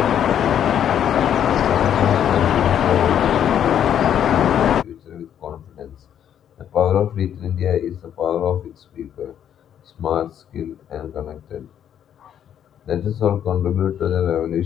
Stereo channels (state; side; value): quieter; right; 9.6 dB